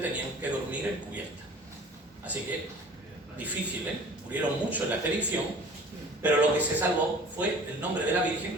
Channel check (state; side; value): normal; both; correlation 0.46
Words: que dormir en cubierta. Así que, difícil, murieron mucho en la expedición, pero lo que se salvó fue el nombre de la Virgen.